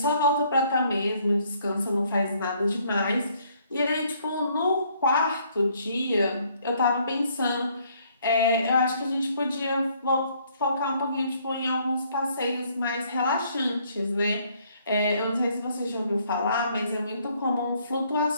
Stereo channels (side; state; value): both; inverted; correlation -0.65